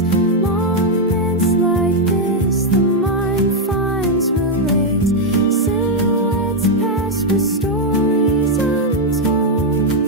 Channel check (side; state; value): both; normal; correlation 0.00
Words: Moments like this, the mind finds relates. Silhouettes pass with stories untold,